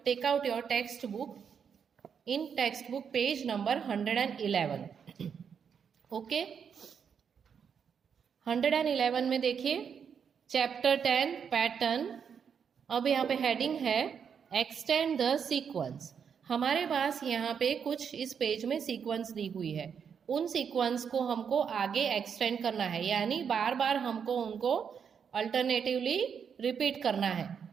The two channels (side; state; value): left; quieter; 7.1 dB